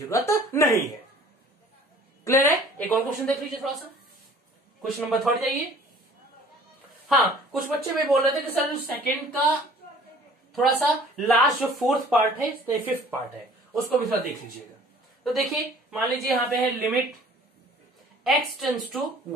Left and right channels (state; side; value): normal; both; correlation 0.51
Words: नहीं है। क्लियर है। एक और क्वेश्चन देख लीजिए थोड़ा सा, क्वेश्चन नंबर 3 जाइए। हाँ, कुछ बच्चे भी बोल रहे थे कि सर सेकंड का थोड़ा सा लास्ट जो 4th पार्ट है, 5th पार्ट है, उसको भी थोड़ा देख लीजिएगा। तो देखिए, मान लीजिए यहां पे है limit x tends to